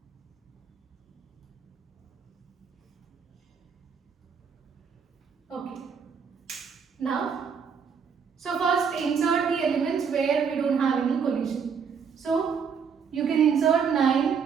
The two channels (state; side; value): quieter; left; 6.5 dB